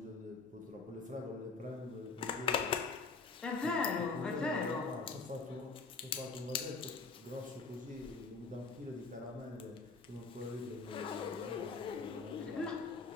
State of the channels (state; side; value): quieter; right; 4.4 dB